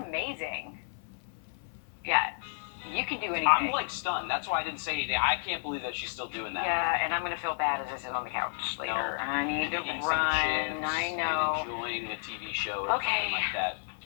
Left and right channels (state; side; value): silent; right; 57 dB below the other